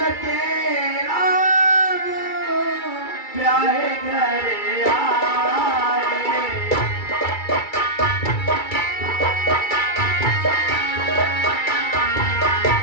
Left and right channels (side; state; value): right; late; 2.3 ms